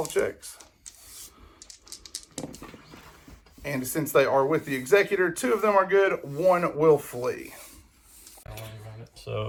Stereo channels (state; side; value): identical; both; correlation 1.00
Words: checks. And since they are with the executor, 2 of them are good, 1 will flee. So